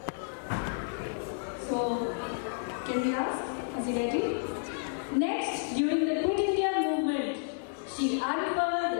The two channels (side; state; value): right; silent; 57 dB below the other